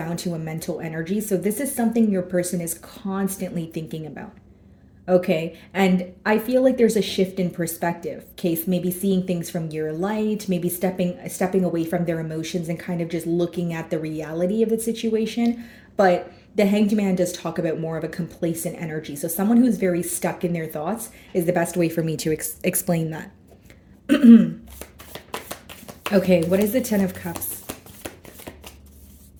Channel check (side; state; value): both; identical; correlation 1.00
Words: to a mental energy. So this is something your person is constantly thinking about. Okay, and I feel like there's a shift in perspective. Case maybe seeing things from your light, maybe stepping away from their emotions and kind of just looking at the reality of the situation. But the Hanged Man does talk about more of a complacent energy. So someone who's very stuck in their thoughts is the best way for me to explain that. Okay, what is the Ten of Cups?